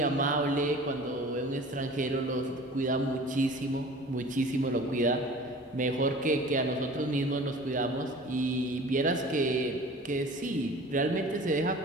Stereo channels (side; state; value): both; normal; correlation 0.42